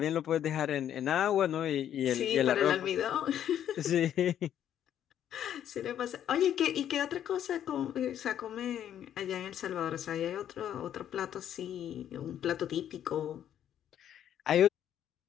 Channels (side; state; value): right; quieter; 10.3 dB